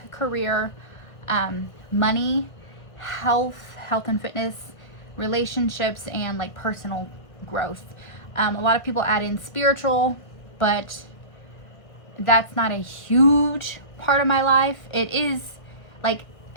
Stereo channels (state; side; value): late; right; 1.5 ms